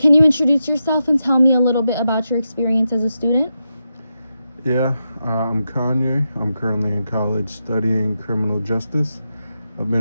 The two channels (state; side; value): inverted; both; correlation -0.87